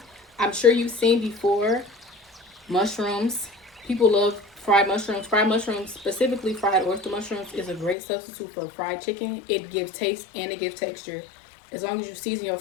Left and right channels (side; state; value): right; drops out; at 8.0 s